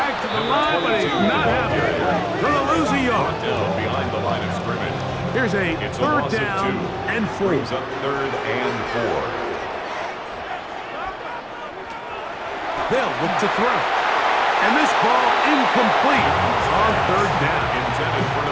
to the line, but he's not happening. Gonna lose a yard. Down behind the line of scrimmage. Here's a third down and 4. Brings up 3rd and 4. They'll look to throw. And this ball incomplete on 3rd down. Intended for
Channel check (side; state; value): both; identical; correlation 1.00